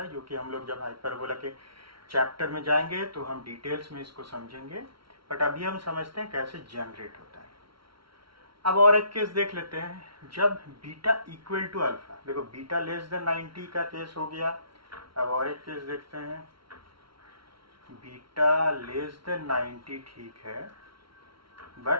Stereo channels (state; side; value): late; left; 0.74 ms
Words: है, जो कि हम लोग जब हाइपरबोला के चैप्टर में जाएंगे तो हम डिटेल्स में इसको समझेंगे, बट अभी हम समझते हैं कैसे जनरेट होता है। अब और एक केस देख लेते हैं, जब बीटा इक्वल टू अल्फा, देखो बीटा लेस देन 90 का केस हो गया। अब और एक केस देखते हैं, बीटा लेस देन 90 ठीक है,